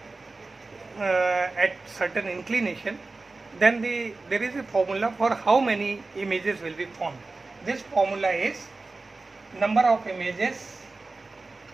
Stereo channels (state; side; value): quieter; left; 3.5 dB